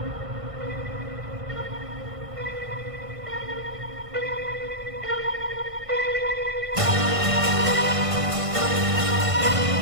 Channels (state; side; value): late; left; 1.5 ms